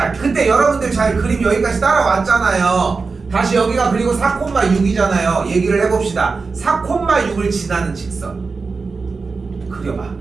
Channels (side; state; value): left; quieter; 4.4 dB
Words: 그때 여러분들 잘 그림 여기까지 따라왔잖아요. 다시 여기가 그리고 4,6이잖아요. 얘기를 해봅시다. 4,6을 지나는 직선 그려봐.